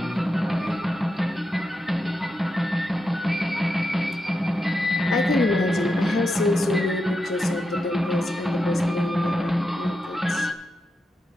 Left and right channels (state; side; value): normal; both; correlation 0.86